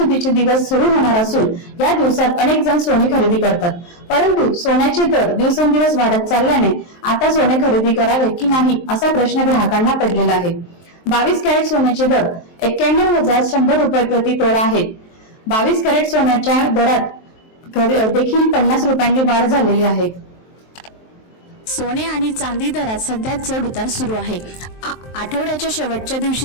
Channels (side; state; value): right; late; 23 ms